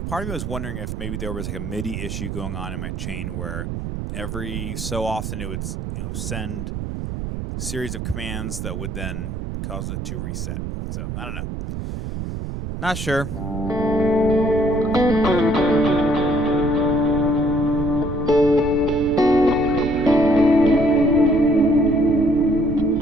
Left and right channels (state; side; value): noise; right; rumble, 5 dB below the sound